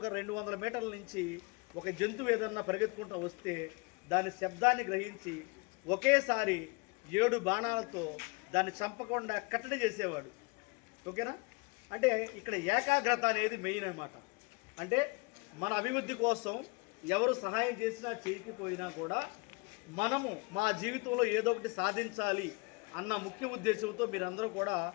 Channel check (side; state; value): right; quieter; 29.2 dB